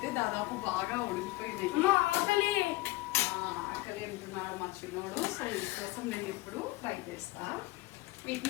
దాదాపు బాగా ఉడికిపోయింది. ఆకలి అంటున్నాడు మా చిన్నోడు, సో దీనికోసం నేను ఇప్పుడు ఫ్రై చేస్తా.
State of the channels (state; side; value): quieter; right; 19.9 dB